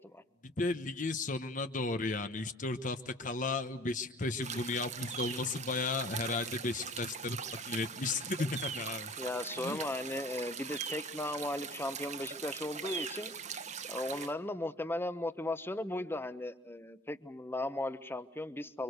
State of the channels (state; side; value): normal; both; correlation 0.49